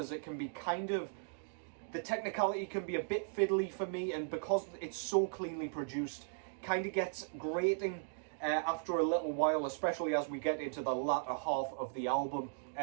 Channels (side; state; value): left; silent; digital silence